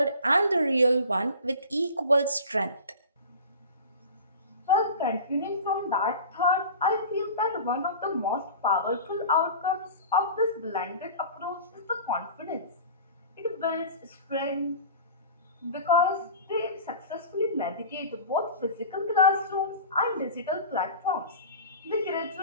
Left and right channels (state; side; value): inverted; both; correlation -0.37